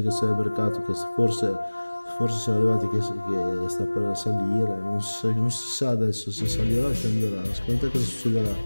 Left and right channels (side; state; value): both; inverted; correlation -1.00